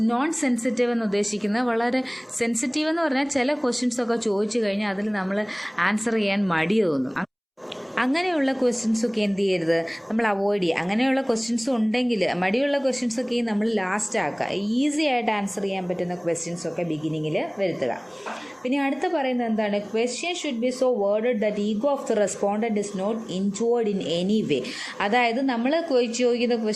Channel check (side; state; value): both; identical; correlation 1.00